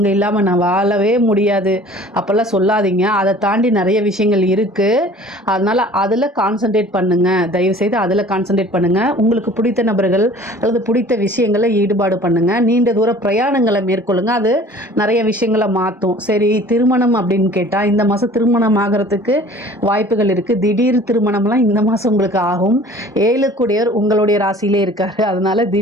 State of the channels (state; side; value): normal; both; correlation 0.48